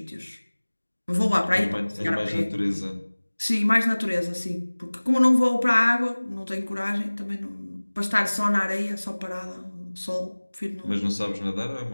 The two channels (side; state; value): both; inverted; correlation -1.00